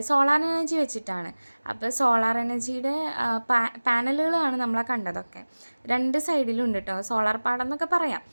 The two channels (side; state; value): both; inverted; correlation -1.00